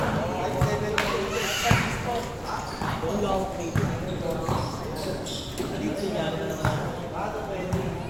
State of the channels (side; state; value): both; identical; correlation 1.00